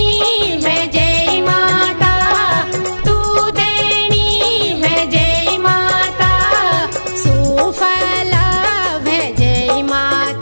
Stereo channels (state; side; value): inverted; both; correlation -1.00